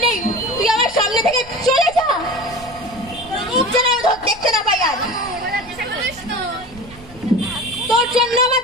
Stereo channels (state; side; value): noise; right; rumble, 19 dB below the sound